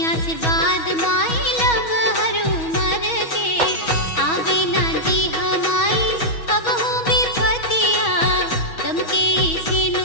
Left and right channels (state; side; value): late; right; 6.2 ms